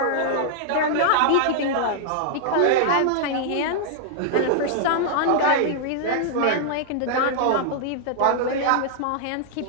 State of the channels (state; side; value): different; both; correlation -0.01